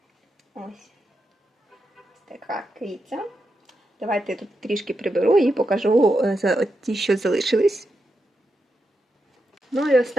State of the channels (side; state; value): both; normal; correlation 0.86